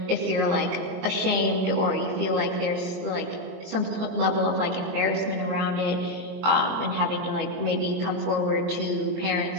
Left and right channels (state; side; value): late; left; 23 ms